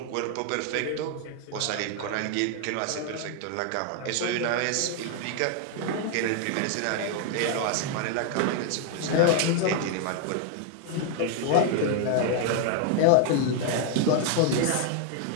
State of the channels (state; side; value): different; both; correlation 0.01